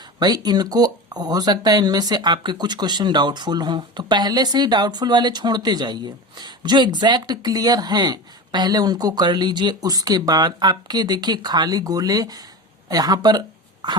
भाई, इनको हो सकता है इनमें से आपके कुछ क्वेश्चन डाउटफुल हों, तो पहले से ही डाउटफुल वाले छोड़ते जाइए, जो एग्जैक्ट क्लियर हैं पहले उनको कर लीजिए। उसके बाद आपके देखिए खाली गोले यहाँ पर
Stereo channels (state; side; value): normal; both; correlation 0.27